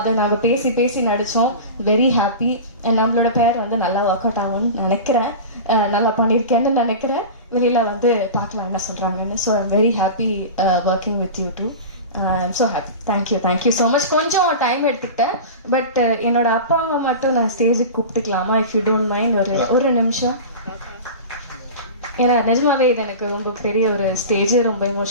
நாங்கள் பேசி நடித்தோம். Very happy. அண்ட் நம்மளோட பேர் வந்து நல்லா ஒர்க் அவுட் ஆகும்னு நினைக்கிறேன், நல்லா பண்ணியிருக்கேன்னு நினைக்கிறேன். வெளியில வந்து பார்க்கலாம் என்ன சொல்றாங்கன்னு. So I'm very happy working with you too. I'm so happy. Thank you so much. கொஞ்சம் டைம் எடுத்துக்கிட்டேன். பட் என்னோட அப்பா அம்மா மட்டும் நான் ஸ்டேஜுக்கு கூப்பிட்டுக்கலாமா, இஃப் யூ டோன்ட் மைண்ட்? ஒரு நிமிஷம். ஏன்னா நிஜமாவே இது எனக்கு ரொம்ப பெரிய ஒரு ஸ்டேஜ், ரொம்ப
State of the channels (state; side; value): inverted; both; correlation -0.31